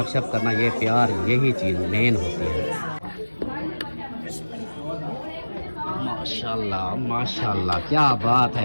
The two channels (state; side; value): inverted; both; correlation -1.00